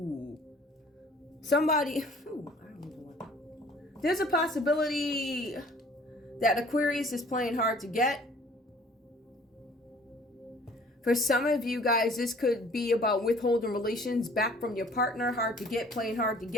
Somebody, there's a possibility that Aquarius is playing hard to get. For some of you guys, this could be about withholding relations back from your partner. Hard to get, playing hard to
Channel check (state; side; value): normal; both; correlation 0.53